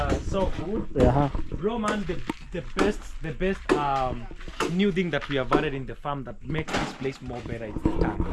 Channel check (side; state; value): both; identical; correlation 1.00